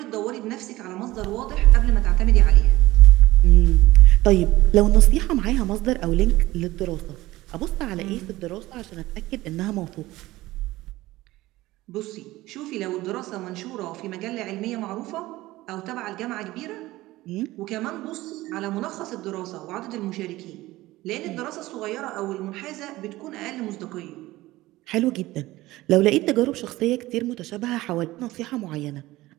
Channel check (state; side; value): quieter; left; 17.9 dB